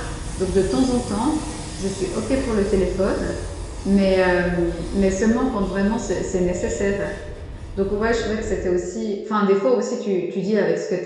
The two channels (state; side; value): identical; both; correlation 1.00